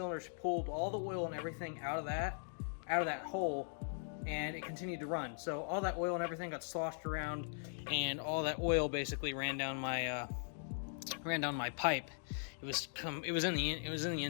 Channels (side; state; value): right; silent; digital silence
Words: pulled all the oil and everything out of that hole, and it continued to run. So all that oil and everything got sloshed around, and all that oil basically ran down my pipe. It was in the